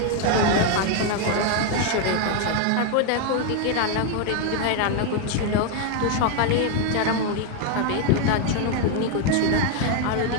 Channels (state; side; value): different; both; correlation 0.01